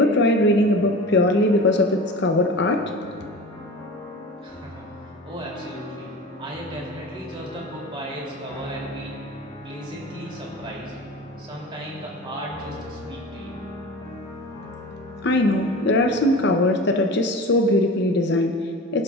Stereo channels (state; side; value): normal; both; correlation 0.35